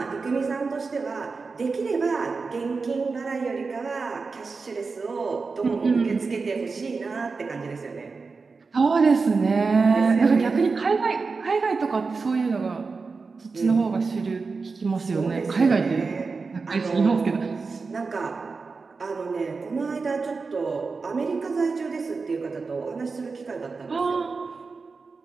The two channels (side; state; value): left; quieter; 4.4 dB